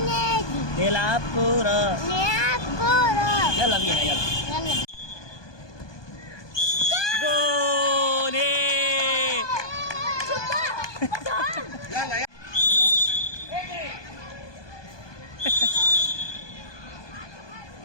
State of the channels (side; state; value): right; late; 1.2 ms